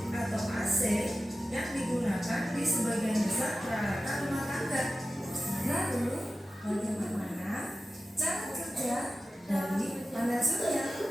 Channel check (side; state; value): both; normal; correlation 0.93